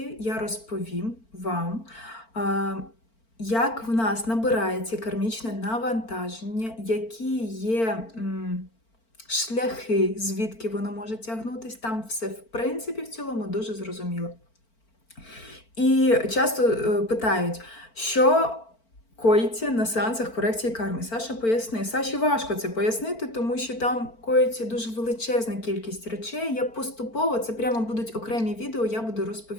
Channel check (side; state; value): right; late; 4.4 ms